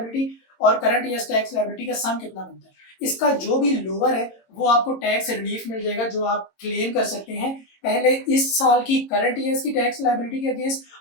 और करंट ईयर टैक्स लायबिलिटी का सम कितना बनता है। इसका जो भी लोअर है वो आपको टैक्स रिलीफ मिल जाएगा जो आप क्लेम कर सकते हैं पहले इस साल की करंट ईयर्स की टैक्स लायबिलिटी के अगेंस्ट,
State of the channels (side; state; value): right; late; 22 ms